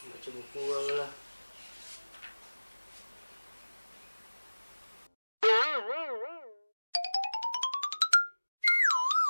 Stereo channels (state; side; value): inverted; both; correlation -1.00